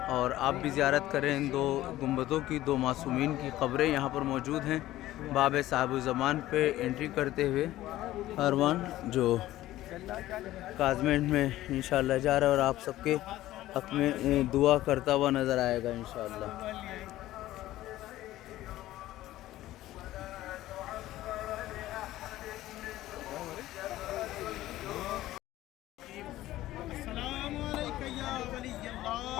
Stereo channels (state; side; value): quieter; right; 15.3 dB